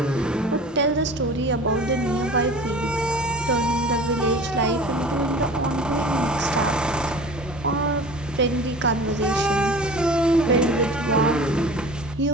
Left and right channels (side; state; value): both; normal; correlation 0.40